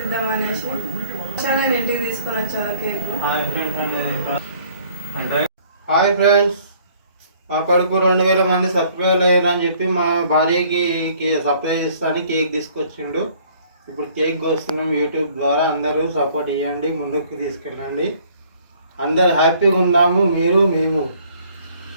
ఇద్దామనేసి నేను ఇంటికి తీసుకొని వచ్చాను కేక్. హాయ్ ఫ్రెండ్స్, మా కొడుకు 2000 మంది సబ్స్క్రైబ్ అయ్యారని చెప్పి మా భార్యకి సర్ప్రైజ్ ఇస్తాను కేక్ తీసుకొచ్చిండు. ఇప్పుడు కేక్ కోస్తున్నాం. యూట్యూబ్ ద్వారా అందరూ సపోర్ట్ ఇవ్వండి, ముందుకు తీసుకెళ్ళండి. అందరు హ్యాపీగా ఉన్నాము, మీరు మేము.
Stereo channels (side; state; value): both; inverted; correlation -0.58